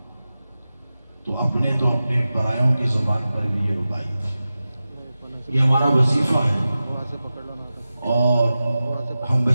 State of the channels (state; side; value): inverted; both; correlation -0.94